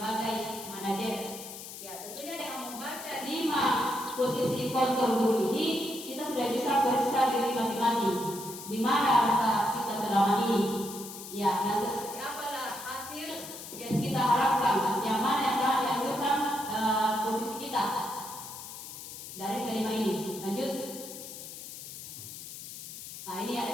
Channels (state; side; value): noise; left; hiss, 11 dB below the sound